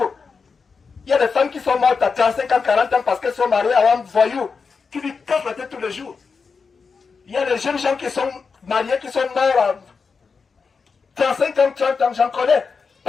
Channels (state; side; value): quieter; right; 5.1 dB